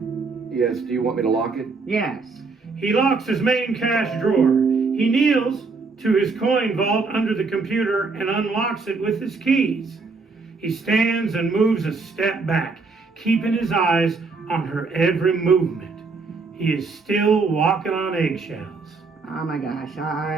Yes, do you want me to lock it? Yes. He locks his main cash drawer. He kneels to his coin vault under the computer and unlocks it with his keys. He stands and moves a step back, keeping his eyes on her every movement. He is still walking on eggshells. Oh my gosh, all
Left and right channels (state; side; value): quieter; left; 4.2 dB